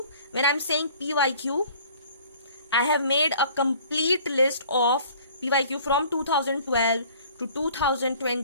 when I'm saying PYQ, I have made a complete list of PYQ from 2012 to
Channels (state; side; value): inverted; both; correlation -0.52